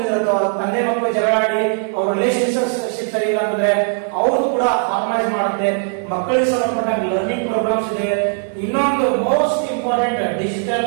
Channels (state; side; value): silent; left; 56 dB below the other